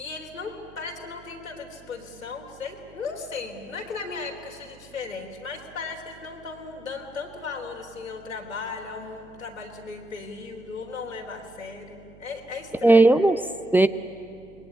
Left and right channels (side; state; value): right; noise; hum, 22 dB below the sound